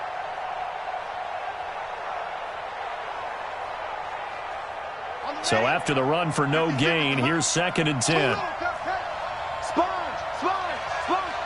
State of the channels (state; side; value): identical; both; correlation 1.00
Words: So after the run for no gain, here's 2nd and 10. Sponge.